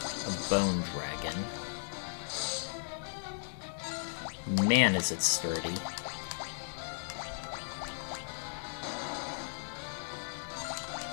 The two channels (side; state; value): right; silent; digital silence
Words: A Bone Dragon. Man, is it sturdy.